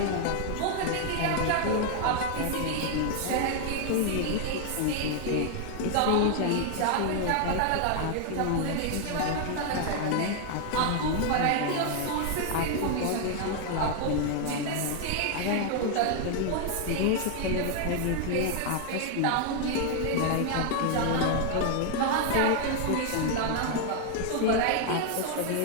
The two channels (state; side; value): different; both; correlation 0.00